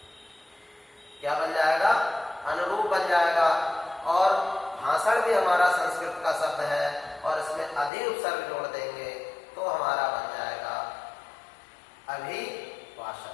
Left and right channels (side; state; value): right; drops out; at 7.9 s